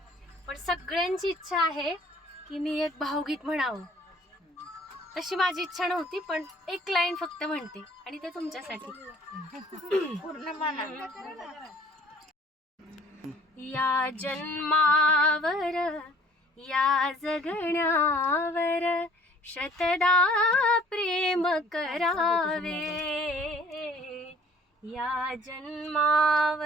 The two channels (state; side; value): normal; both; correlation 0.54